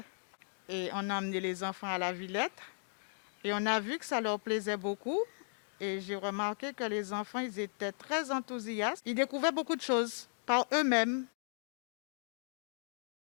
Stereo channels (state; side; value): silent; right; digital silence